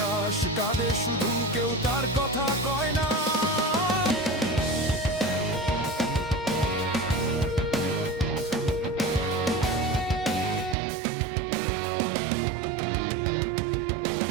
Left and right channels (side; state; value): left; drops out; at 10.8 s